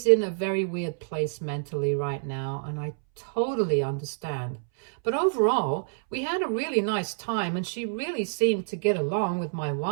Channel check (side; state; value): left; silent; 60 dB below the other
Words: in a very weird place mentally right now, and I totally understand. But overall, we had a really nice time, and she really seemed to get along with my